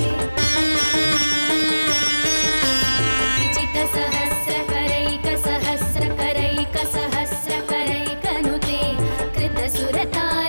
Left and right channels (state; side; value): inverted; both; correlation -1.00